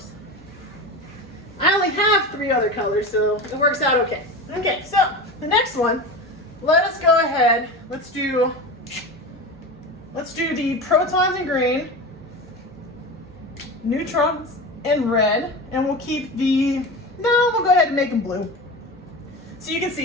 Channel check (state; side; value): normal; both; correlation 0.27